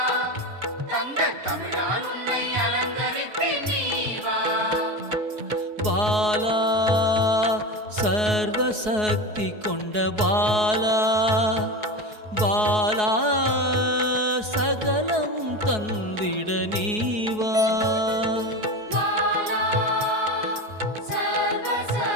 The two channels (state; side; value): late; left; 4.7 ms